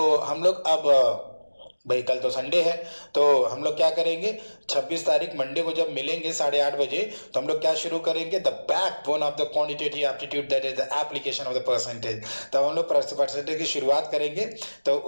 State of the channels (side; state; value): both; inverted; correlation -1.00